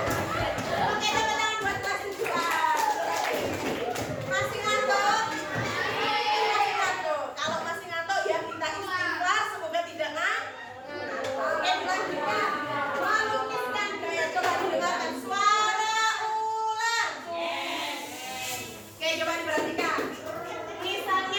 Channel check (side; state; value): both; identical; correlation 1.00